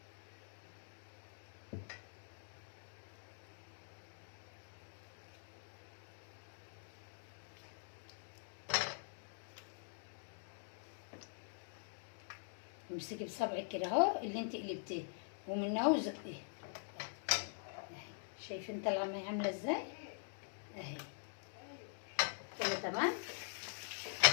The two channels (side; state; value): right; silent; digital silence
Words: امسكي بصبعك كده اهو اللي انت قلبتيه ومن اهو زقيه اهي. شايفين طالعه معايا عامله ازاي اهي كده؟ تمام.